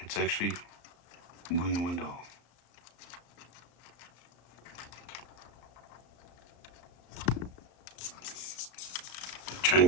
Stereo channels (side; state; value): right; late; 35 ms